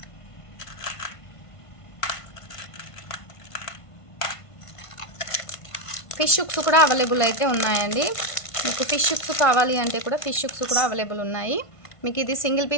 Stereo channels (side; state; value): right; late; 1.5 ms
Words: ఫిష్ హుక్స్ కూడా అవైలబుల్ అయితే ఉన్నాయండి. మీకు ఫిష్ హుక్స్ కావాలి అంటే కూడా ఫిష్ హుక్స్ కూడా అవైలబుల్ ఉన్నాయి. మీకు ఇది సింగిల్